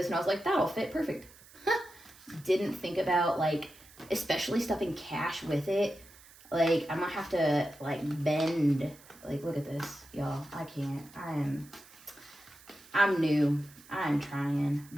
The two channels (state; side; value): noise; right; hiss, 23 dB below the sound